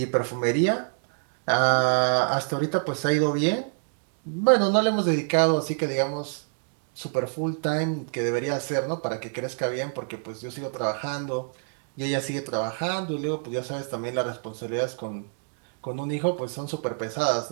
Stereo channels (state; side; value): silent; left; digital silence